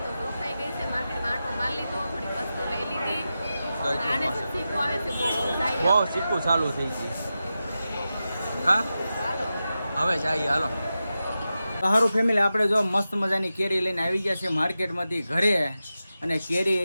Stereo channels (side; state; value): both; inverted; correlation -0.92